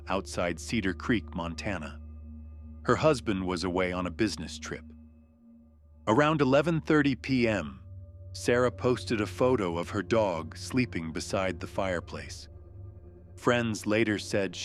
outside Cedar Creek, Montana. Her husband was away on a business trip. Around 11:30 p.m., Sarah posted a photo of her dog sleeping beside the fireplace. Friends later said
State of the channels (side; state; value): both; identical; correlation 1.00